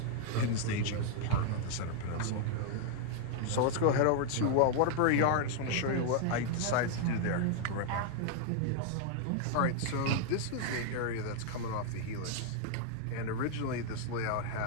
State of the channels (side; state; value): both; different; correlation 0.00